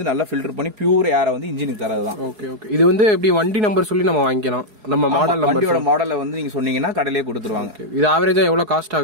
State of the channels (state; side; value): late; left; 4.7 ms